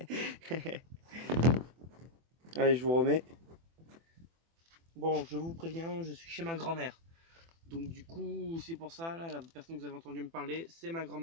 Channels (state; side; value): late; left; 24 ms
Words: Allez, je vous remets. Bon, je vous préviens, je suis chez ma grand-mère. Donc du coup, c'est pour ça, là, la personne que vous avez entendu me parler, c'est ma